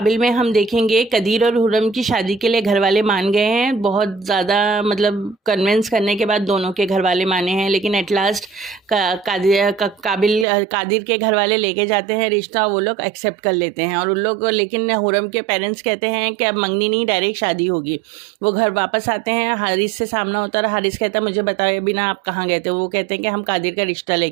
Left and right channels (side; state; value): left; drops out; at 10.5 s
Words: में हम देखेंगे कदीर और हुर्रम की शादी के लिए घर वाले मान गए हैं। बहुत ज़्यादा मतलब कन्विंस करने के बाद दोनों के घर वाले माने हैं, लेकिन एट लास्ट कादिर के घर वाले लेके जाते हैं रिश्ता, वो लोग एक्सेप्ट कर लेते हैं और उन लोग, लेकिन हुर्रम के पेरेंट्स कहते हैं कि अब मंगनी नहीं, डायरेक्ट शादी होगी। वो घर वापस आते हैं, हारिस से सामना होता है। हारिस कहता है मुझे बताए बिना आप कहाँ गए थे। वो कहते हैं कि हम कादिर का रिश्ता